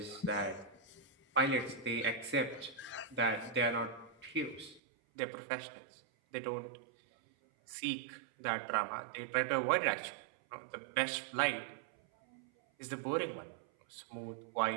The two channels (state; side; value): drops out; left; at 4.8 s